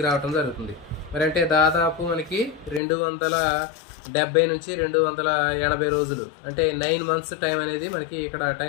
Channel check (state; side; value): drops out; right; at 2.8 s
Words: రావడం జరుగుతుంది. మరి అంటే దాదాపు మనకి 270 నుంచి 280 రోజులు అంటే 9 months టైం అనేది మనకి ఇక్కడ